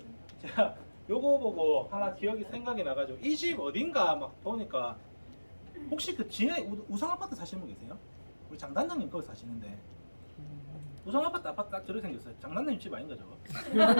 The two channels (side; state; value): both; inverted; correlation -1.00